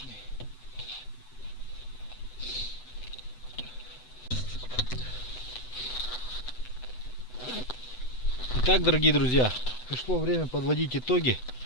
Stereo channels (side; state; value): right; late; 8.0 ms